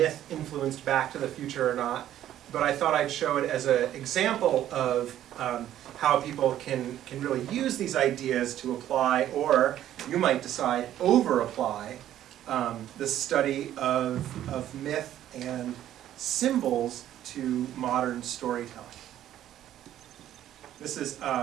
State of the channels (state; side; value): quieter; left; 12.0 dB